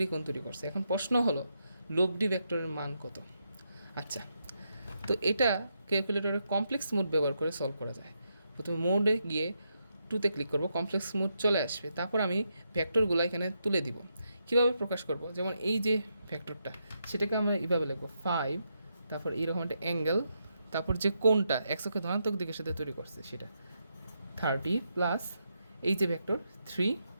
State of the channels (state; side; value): inverted; both; correlation -0.81